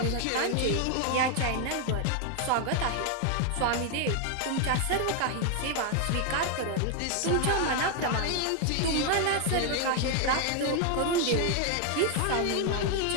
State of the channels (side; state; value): both; different; correlation 0.00